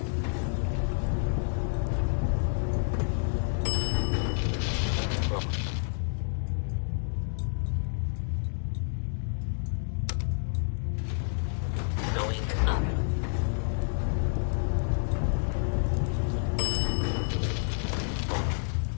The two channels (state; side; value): silent; right; 58 dB below the other